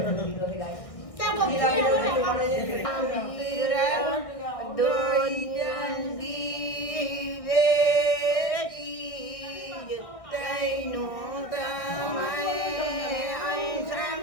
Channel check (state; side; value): late; right; 1.5 ms